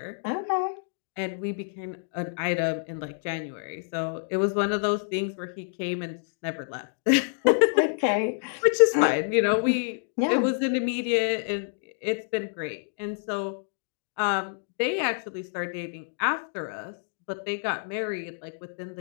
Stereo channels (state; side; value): silent; right; digital silence